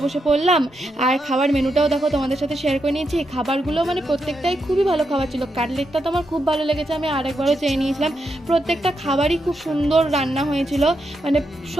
বসে পড়লাম। আর খাবার মেনুটাও দেখো তোমাদের সাথে শেয়ার করে নিয়েছি। খাবারগুলো মানে প্রত্যেকটাই খুবই ভালো খাবার ছিল। কাটলেটটা তো আমার খুব ভালো লেগেছে, আমি আরেকবারও চেয়ে নিয়েছিলাম। প্রত্যেকটা খাবারই খুব সুন্দর রান্না হয়েছিল, মানে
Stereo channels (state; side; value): normal; both; correlation 0.83